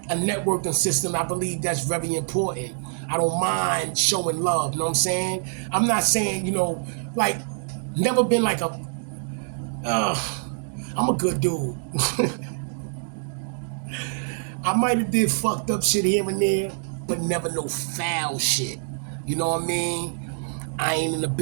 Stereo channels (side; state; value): left; silent; digital silence